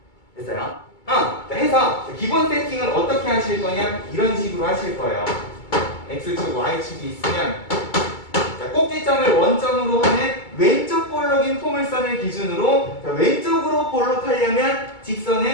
됐어요? 해서 기본 세팅은 어떻게 하실 거냐? 이런 식으로 하실 거예요. X축, Y축이 있으면 자, 꼭지점을 원점으로 하는 왼쪽 볼록인 포물선을 기준으로 자, 왼쪽으로 볼록하려면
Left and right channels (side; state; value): right; late; 2.3 ms